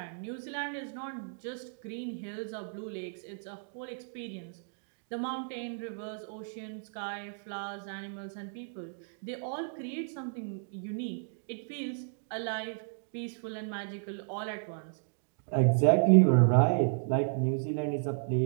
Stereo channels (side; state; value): left; silent; digital silence